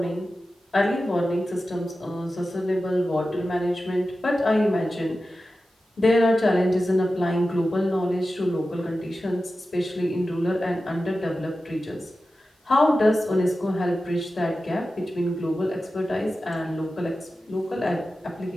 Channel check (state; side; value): normal; both; correlation 0.93